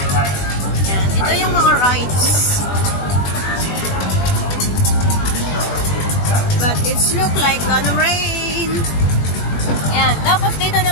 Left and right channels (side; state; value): right; late; 20 ms